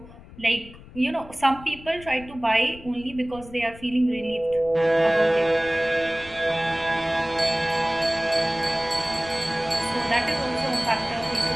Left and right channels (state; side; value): noise; left; rumble, 18 dB below the sound